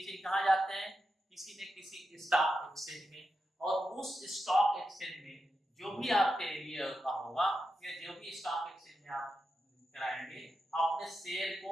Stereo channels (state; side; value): normal; both; correlation 0.88